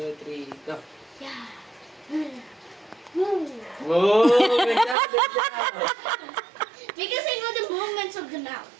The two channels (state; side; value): drops out; left; at 5.0 s